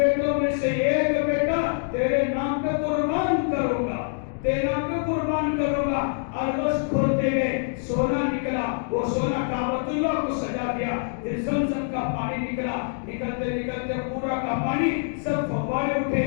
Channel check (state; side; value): silent; right; digital silence